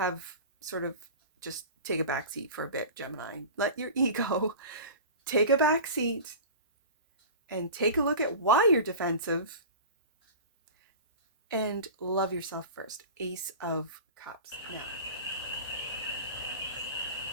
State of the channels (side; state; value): both; inverted; correlation -0.34